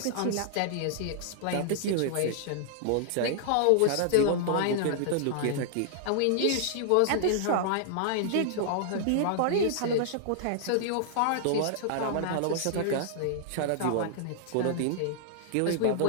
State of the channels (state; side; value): different; both; correlation -0.01